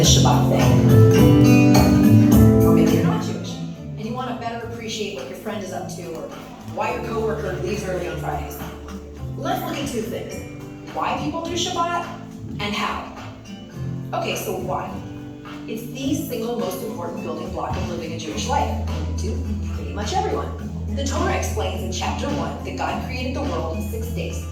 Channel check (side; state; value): both; identical; correlation 1.00